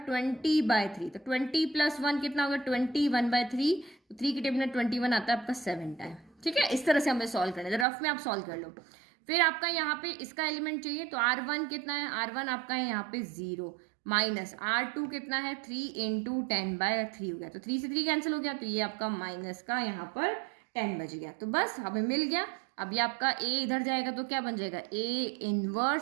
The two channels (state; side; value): drops out; left; at 7.9 s